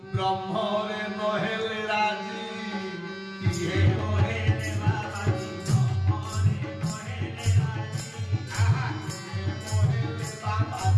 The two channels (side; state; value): both; identical; correlation 1.00